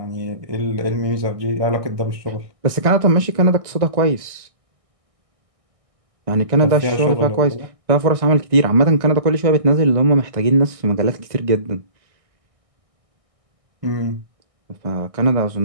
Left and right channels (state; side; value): late; left; 1.6 ms